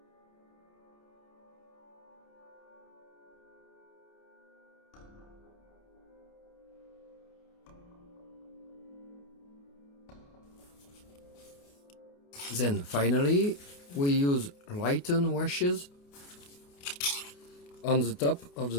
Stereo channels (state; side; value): late; right; 28 ms